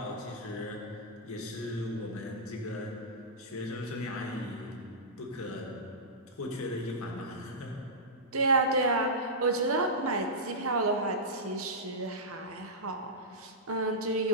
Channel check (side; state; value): both; normal; correlation -0.14